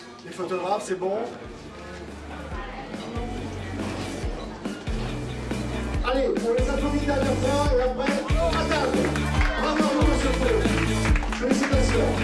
Les photographes, c'est bon. Allez, on les applaudit une dernière fois et après, à table. Bravo, monsieur Faux. Félicitations.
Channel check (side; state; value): both; identical; correlation 1.00